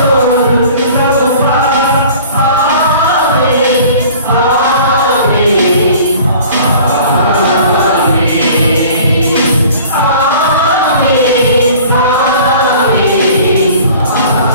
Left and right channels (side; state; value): both; inverted; correlation -0.47